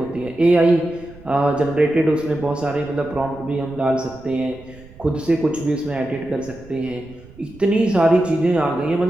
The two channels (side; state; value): right; noise; rumble, 21 dB below the sound